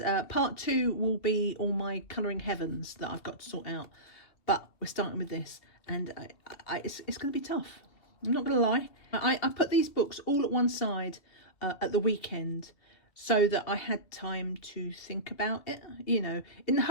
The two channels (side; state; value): right; late; 2.7 ms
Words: part two will be all my colouring heavens that I've got to sort out. But we're starting with this, and it's going to be tough. I'm not going to lie. I put these books all at one side at the weekend, so that I had time to think about it, you know, in the